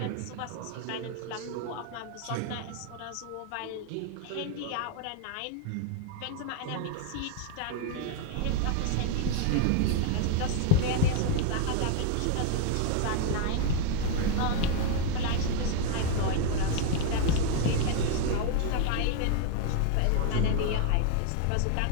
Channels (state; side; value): different; both; correlation 0.00